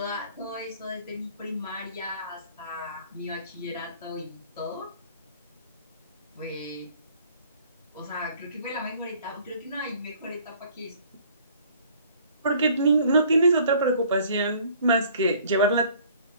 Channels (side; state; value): both; inverted; correlation -0.55